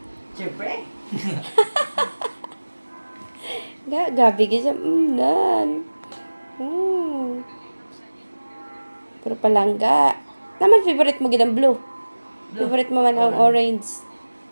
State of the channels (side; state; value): both; inverted; correlation -1.00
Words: Siyempre. Gabi ka siya. Nan. Pero palangga. Naman favorite mo gid blue. Favorite mo man ang orange.